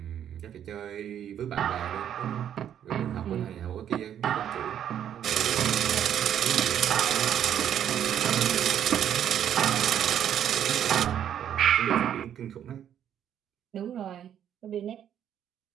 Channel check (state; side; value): quieter; left; 9.8 dB